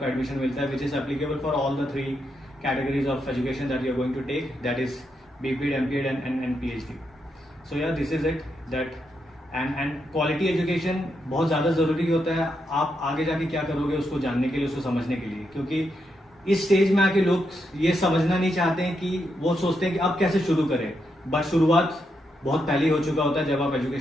एडमिशन मिलता है, which is applicable for all the 3 categories of education that you are going to take, that is BPEd, MPEd and PhD. So yeah this is it that and quality education बहुत ज़्यादा ज़रूरी होता है आप आगे जाके क्या करोगे उसको जानने के लिए, उसको समझने के लिए, क्योंकि इस स्टेज में आके लोग ये समझना नहीं चाहते हैं कि वो सोचते हैं कि अब कैसे शुरू करें, बट शुरुआत बहुत पहले हो चुका होता है जब आप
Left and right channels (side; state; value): both; normal; correlation 0.82